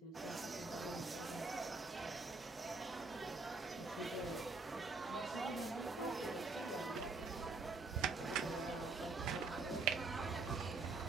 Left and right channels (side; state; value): left; quieter; 3.7 dB